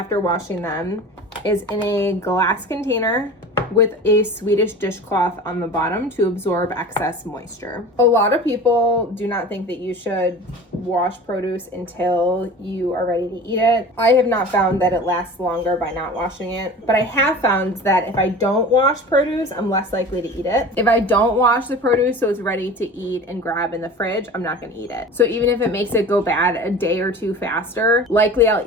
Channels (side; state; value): both; normal; correlation 0.37